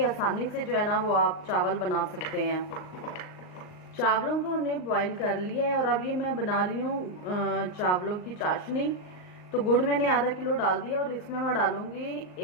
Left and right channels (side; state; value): right; late; 38 ms